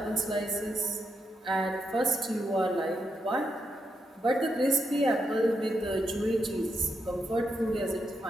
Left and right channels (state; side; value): normal; both; correlation 0.83